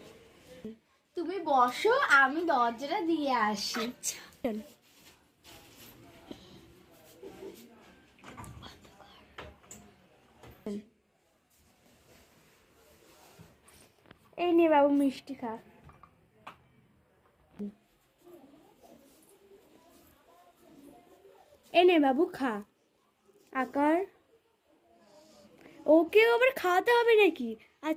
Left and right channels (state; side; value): identical; both; correlation 1.00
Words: তুমি বসো, আমি দরজাটা দিয়ে আসি। আচ্ছা চলো। এই নে বাবু মিষ্টি খা। এই নে বাবু খা। আকার ওকেও আবার খাওয়াতে হবে নাকি?